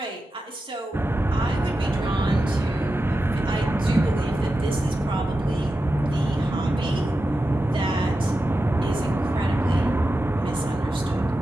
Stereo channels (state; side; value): normal; both; correlation 0.91